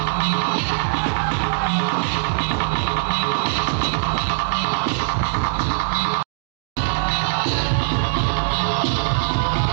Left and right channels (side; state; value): left; silent; digital silence